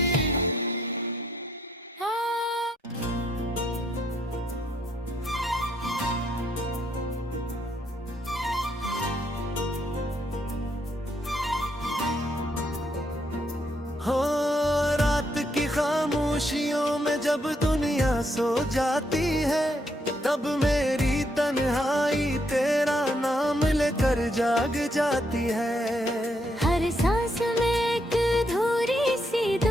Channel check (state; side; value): normal; both; correlation 0.75